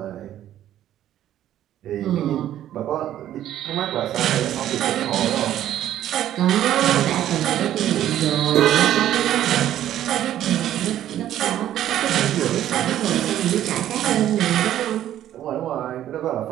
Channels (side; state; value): left; quieter; 12.0 dB